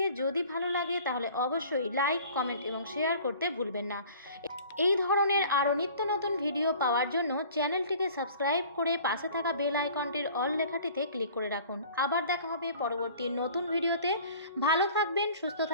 যদি ভালো লাগে তাহলে অবশ্যই লাইক, কমেন্ট এবং শেয়ার করতে ভুলবেন না। এই ধরনের আরও নিত্য নতুন ভিডিও পাওয়ার জন্য চ্যানেলটিকে সাবস্ক্রাইব করে পাশে থাকা বেল আইকনটির অল লেখাটিতে ক্লিক করে রাখুন। আবার দেখা হবে পরবর্তী নতুন ভিডিওতে। ভালো থাকবেন, সুস্থ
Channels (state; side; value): inverted; both; correlation -0.48